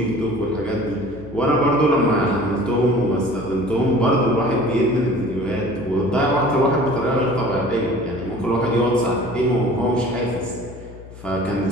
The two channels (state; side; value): noise; left; hum, 17 dB below the sound